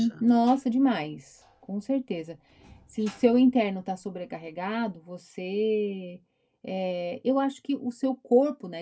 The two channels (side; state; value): both; identical; correlation 1.00